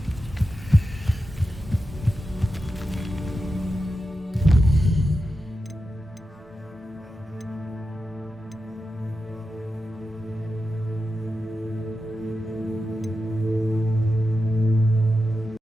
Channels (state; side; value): normal; both; correlation 0.90